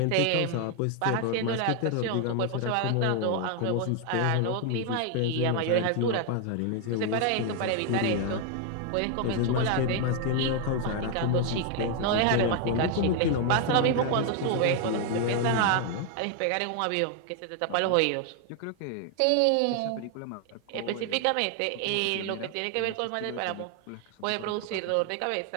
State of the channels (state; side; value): different; both; correlation 0.01